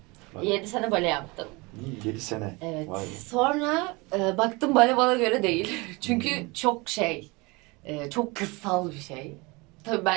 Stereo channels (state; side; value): quieter; left; 25.7 dB